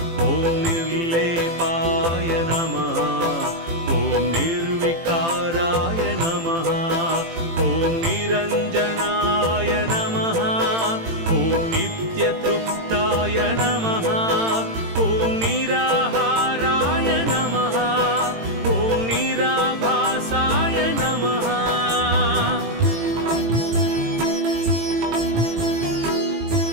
ॐ निर्लेपाय नमः। ॐ निर्विकाराय नमः। ॐ निरञ्जनाय नमः। ॐ नित्यतृप्ताय नमः। ॐ निराहाराय नमः। ॐ निराभासाय नमः।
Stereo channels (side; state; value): left; late; 18 ms